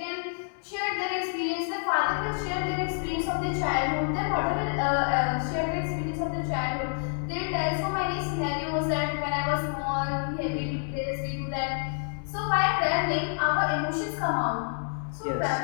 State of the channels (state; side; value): silent; right; 59 dB below the other